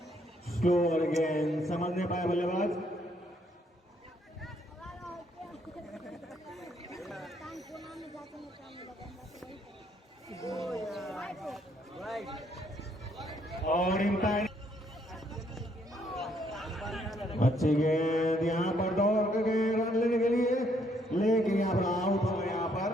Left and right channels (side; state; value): both; normal; correlation 0.70